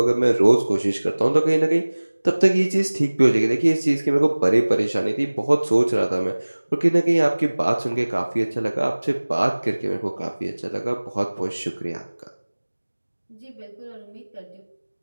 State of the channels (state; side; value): inverted; both; correlation -1.00